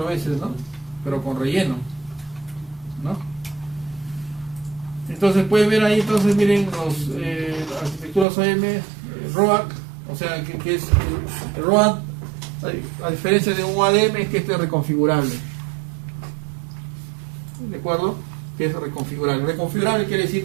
veces, ¿no? Pero con relleno, ¿no? Entonces pueden ver ahí, entonces miren las arquitecturas OM, ROAD, o sea que es el ROAD, a diferencia de un ADM, es que este es reconfigurable. ¿De acuerdo? Que es reconfigurable. Reconfigurable quiere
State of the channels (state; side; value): drops out; left; at 8.2 s